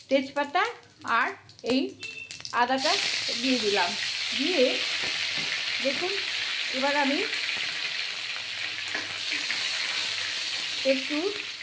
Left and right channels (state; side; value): identical; both; correlation 1.00